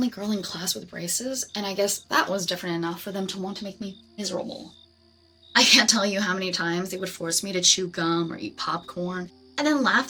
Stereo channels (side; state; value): both; identical; correlation 1.00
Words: girl in class with braces, and I guess that was different enough for them to want to make me miserable. I can't tell you how many times they would force me to chew gum or eat popcorn, and then laugh